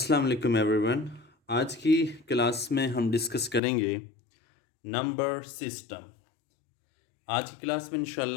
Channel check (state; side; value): drops out; right; at 3.6 s